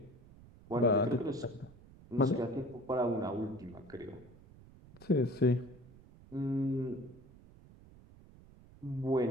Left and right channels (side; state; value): right; noise; rumble, 22 dB below the sound